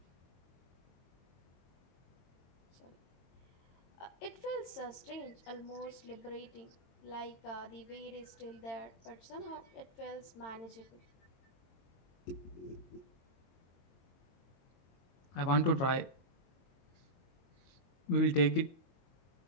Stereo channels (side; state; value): right; late; 22 ms